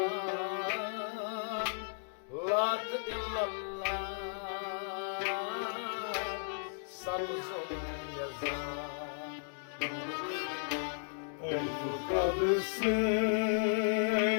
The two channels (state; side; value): silent; right; digital silence